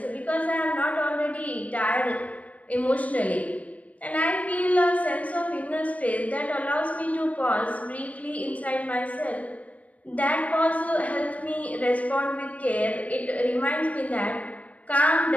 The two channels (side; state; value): right; late; 0.069 ms